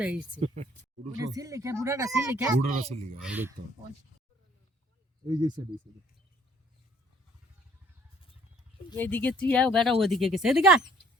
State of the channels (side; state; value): both; normal; correlation 0.59